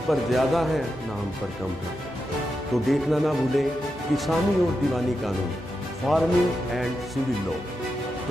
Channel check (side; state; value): both; normal; correlation 0.87